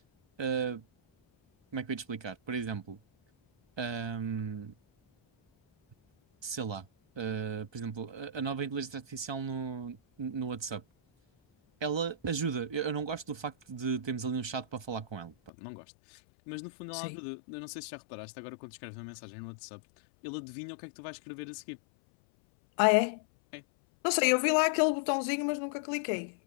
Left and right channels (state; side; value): drops out; right; at 15.5 s